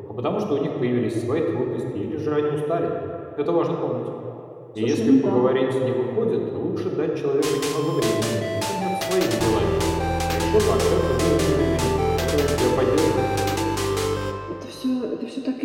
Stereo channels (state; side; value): identical; both; correlation 1.00